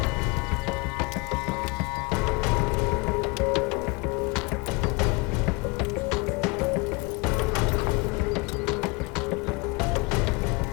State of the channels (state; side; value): quieter; right; 27.7 dB